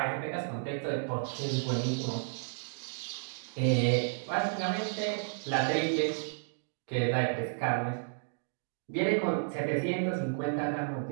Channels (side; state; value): left; silent; digital silence